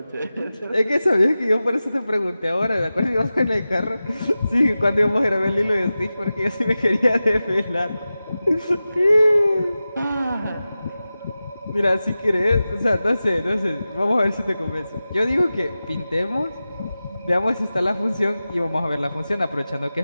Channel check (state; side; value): inverted; both; correlation -0.95